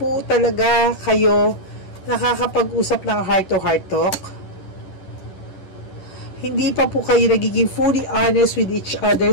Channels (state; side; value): late; right; 11 ms